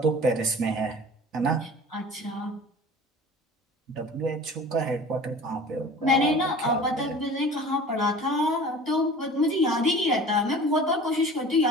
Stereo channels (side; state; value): both; normal; correlation 0.42